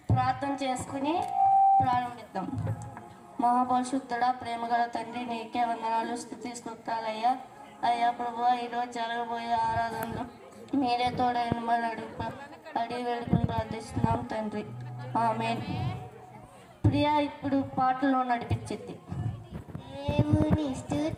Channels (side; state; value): both; identical; correlation 1.00